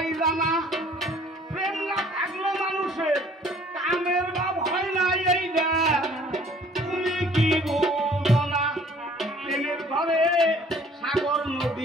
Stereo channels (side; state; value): both; normal; correlation 0.55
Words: জানা প্রেম না থাকলো মানুষের কামের ভাব হয় না এইটা তুমি কি বলো না প্রেমের ঘরে সাগর